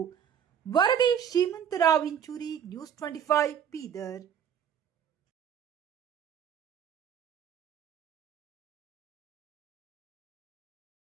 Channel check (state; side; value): quieter; left; 8.6 dB